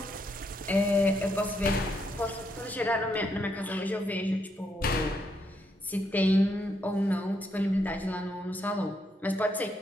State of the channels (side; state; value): both; normal; correlation 0.77